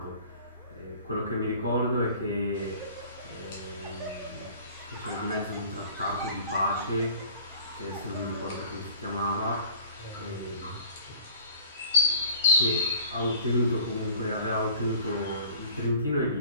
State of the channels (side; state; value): both; inverted; correlation -0.47